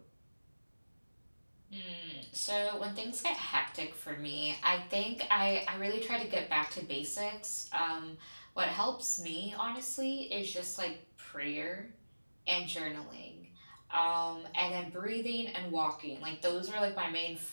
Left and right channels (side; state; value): both; inverted; correlation -1.00